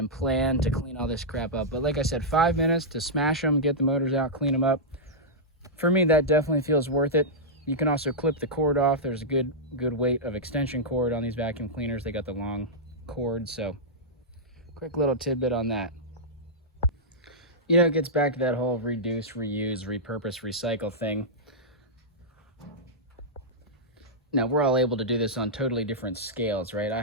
plan to clean all this crap up. But like I said, 5 minutes to smash them, get the motors out, clean them up. For me, that definitely feels worth it. You can also clip the cord off. There's a good weight of extension cord on these vacuum cleaners. They got the long cord, so quick little tidbit on that. It gets back to that whole reduce, reuse, repurpose, recycle thing. Now, we're all able to do this on totally different scales, right? I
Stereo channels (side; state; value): both; normal; correlation -0.10